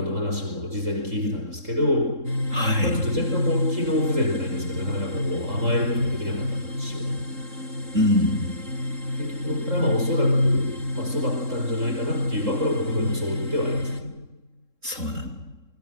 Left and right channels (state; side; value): late; left; 3.7 ms